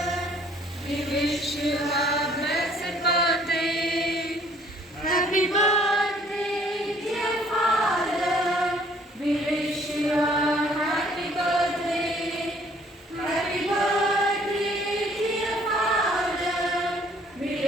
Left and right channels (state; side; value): normal; both; correlation 0.60